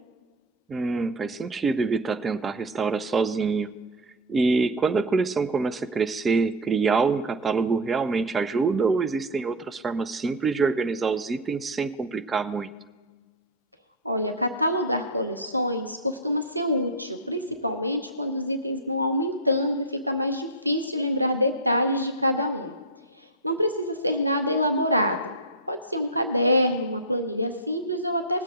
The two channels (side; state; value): both; normal; correlation 0.02